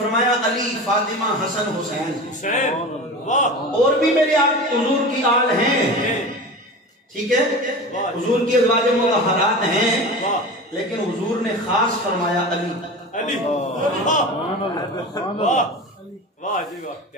علی، فاطمہ، حسن، حسین، اور بھی میرے آپ حضور کی آل ہیں، ٹھیک ہے، حضور کی ازواج مطہرات ہیں، لیکن حضور نے خاص فرمایا علی۔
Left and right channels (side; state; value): both; normal; correlation 0.31